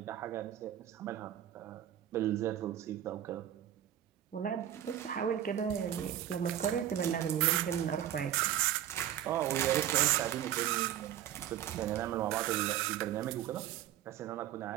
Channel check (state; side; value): quieter; left; 11.3 dB